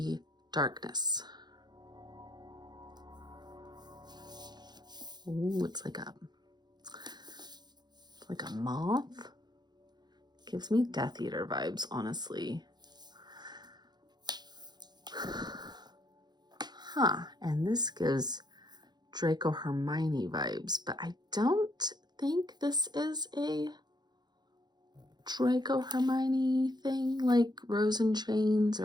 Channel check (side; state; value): left; late; 0.21 ms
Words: darkness. Ooh, it's like a moth. Gives me Death Eater vibes, honestly. Huh, and this gives Draco Hermione vibes, but I don't think this is a Draco Hermione thing, like Rose and Chains,